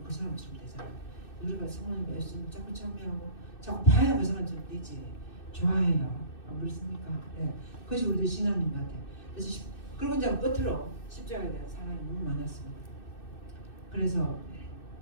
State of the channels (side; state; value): right; late; 2.6 ms